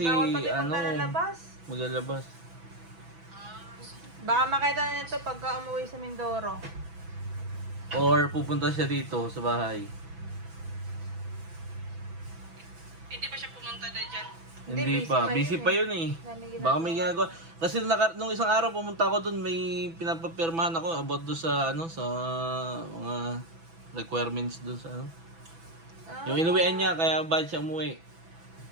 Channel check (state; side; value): late; left; 6.0 ms